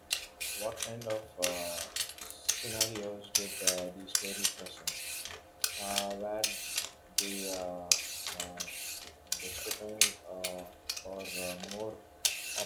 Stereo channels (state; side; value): identical; both; correlation 1.00